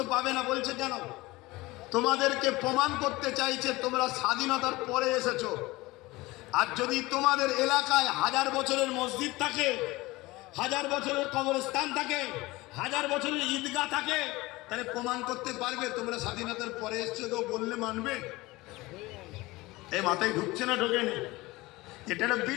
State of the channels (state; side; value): quieter; right; 20.7 dB